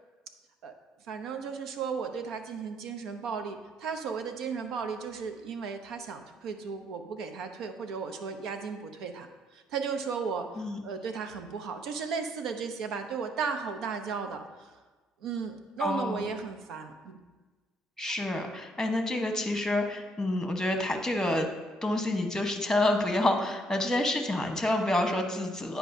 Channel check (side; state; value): both; normal; correlation 0.71